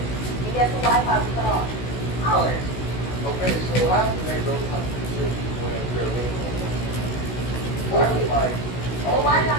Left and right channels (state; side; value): late; right; 16 ms